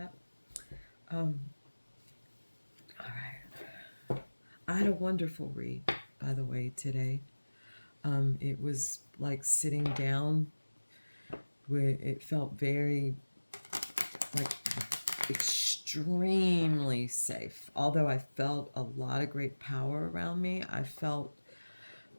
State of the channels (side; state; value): both; inverted; correlation -1.00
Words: All right. I had a wonderful read, by the way, today. It was like sitting down where it felt very, like, extremely safe. Although I felt a lot of great power around me, I felt